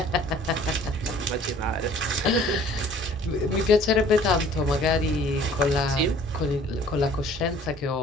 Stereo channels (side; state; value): both; normal; correlation 0.52